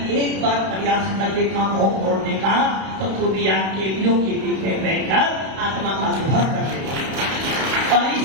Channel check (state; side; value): late; left; 31 ms